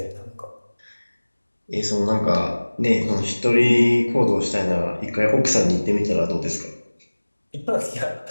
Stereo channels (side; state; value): both; inverted; correlation -1.00